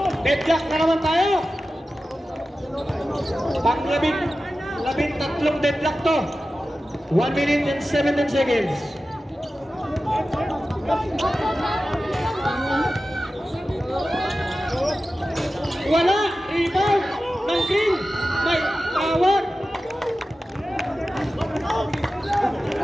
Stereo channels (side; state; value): both; normal; correlation 0.94